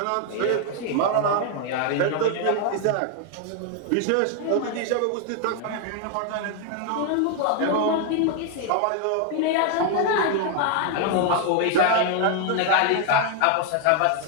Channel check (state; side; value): different; both; correlation 0.00